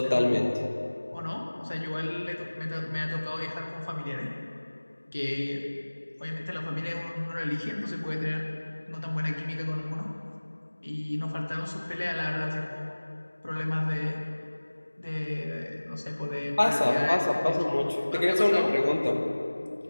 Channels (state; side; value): inverted; both; correlation -1.00